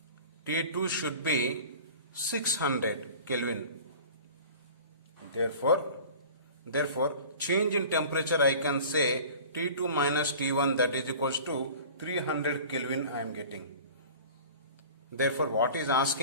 T2 should be 600 Kelvin. Therefore change in temperature I can say T2 minus T1, that is equals to 300 Kelvin I am getting. Therefore what is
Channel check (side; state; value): both; inverted; correlation -0.41